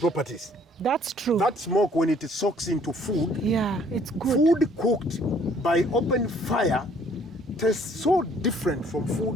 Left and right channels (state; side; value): normal; both; correlation 0.60